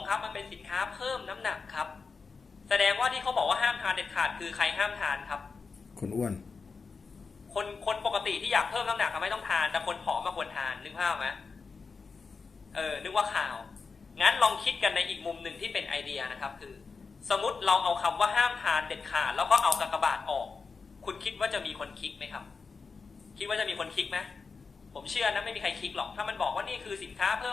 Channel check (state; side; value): quieter; right; 4.8 dB